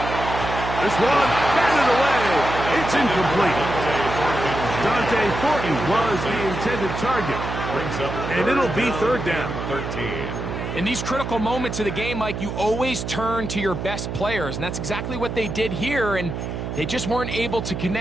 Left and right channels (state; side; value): noise; right; hum, 5 dB below the sound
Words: This one, batted away. It's incomplete. Dante Thornton was the intended target. And it'll be third down. 13. In these critical moments of the game, Mike, you always turn to your best players, and that's exactly what they did here, and they just weren't able to